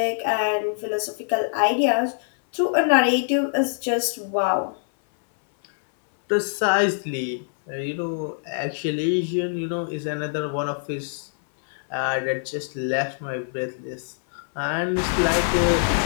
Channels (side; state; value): right; silent; 63 dB below the other